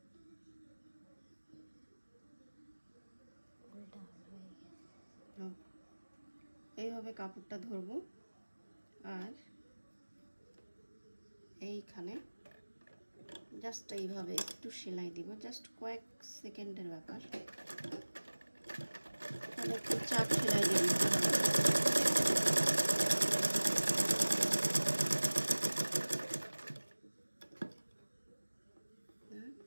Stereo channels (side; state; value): both; inverted; correlation -1.00